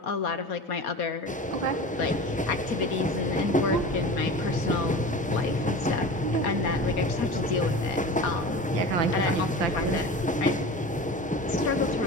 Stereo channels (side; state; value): both; normal; correlation 0.34